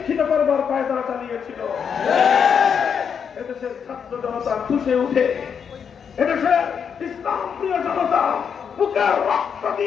করবার পায়তারা চালিয়েছিল। এদেশের ছাত্র জনতা খুশে উঠে, এদেশের ইসলাম প্রিয় জনতা বুকের রক্ত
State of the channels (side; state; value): right; quieter; 7.1 dB